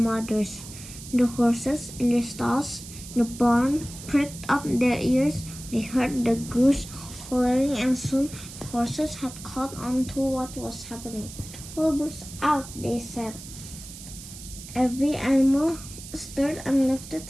The horses in their stalls in the barn pricked up their ears. They heard the goose hollering, and soon the horses had caught on to what was happening. Wilbur's out, they said. Every animal stirred and lifted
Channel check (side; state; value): right; noise; hiss, 14 dB below the sound